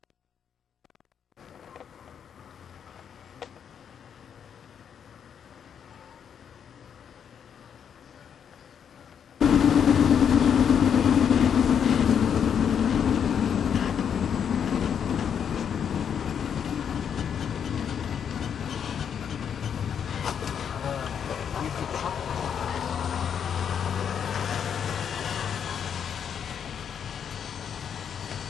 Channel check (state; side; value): quieter; right; 7.9 dB